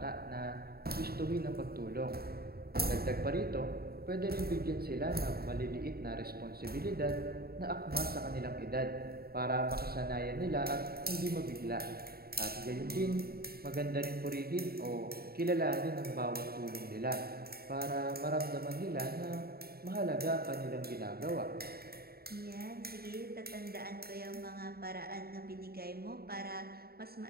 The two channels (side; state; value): left; late; 0.45 ms